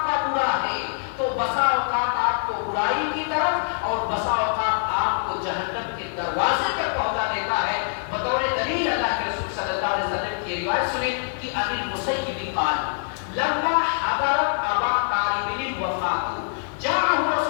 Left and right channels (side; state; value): right; silent; digital silence